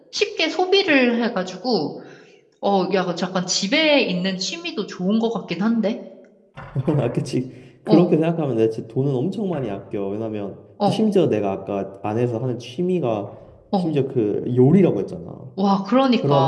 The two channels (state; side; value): identical; both; correlation 1.00